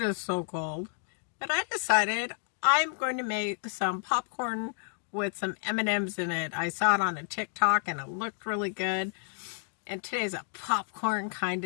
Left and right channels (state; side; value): silent; right; digital silence